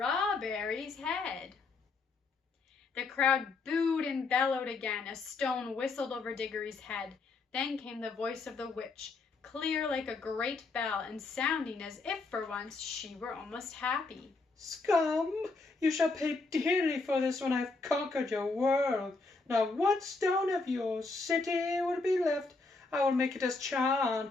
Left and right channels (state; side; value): quieter; right; 3.8 dB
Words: head. The crowd booed and bellowed again. A stone whistled over Diggory's head. Then came the voice of the witch, clear like a great bell, and sounding as if for once she were almost happy. Scum! You shall pay dearly for this when I've conquered your world. Not one stone of your city will be left. I will make it as